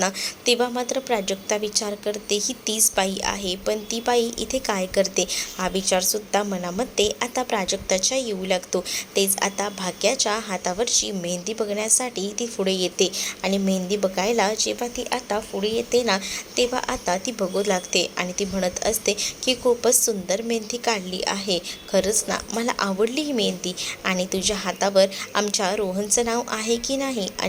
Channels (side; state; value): both; identical; correlation 1.00